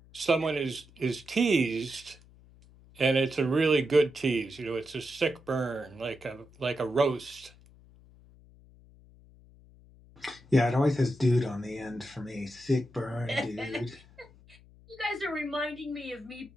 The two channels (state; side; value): noise; left; hum, 25 dB below the sound